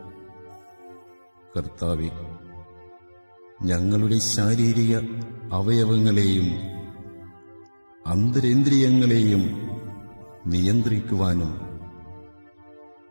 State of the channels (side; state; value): both; inverted; correlation -1.00